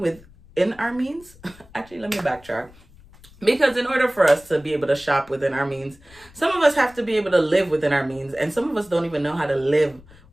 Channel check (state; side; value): noise; left; rumble, 25 dB below the sound